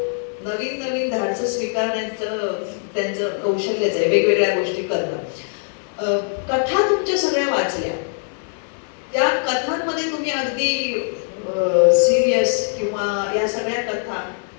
नवीन नवीन धाडसं स्वीकारण्याचं त्यांचं कौशल्यच आहे, वेगवेगळ्या गोष्टी करणं. कथा तुमच्या सगळ्या वाचल्या, त्या कथांमध्ये तुम्ही अगदी सिरियस किंवा या सगळ्या कथा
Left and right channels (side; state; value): right; silent; 60 dB below the other